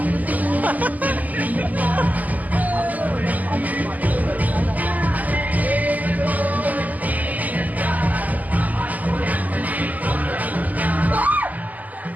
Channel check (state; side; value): late; left; 0.079 ms